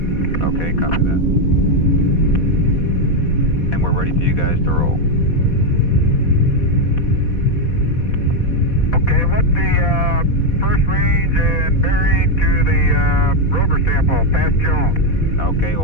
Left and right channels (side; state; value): right; late; 4.2 ms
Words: Okay, copy that. And we're ready for you guys to roll. Okay, what's the first range and bearing to the rover sample, past Jones? Okay, it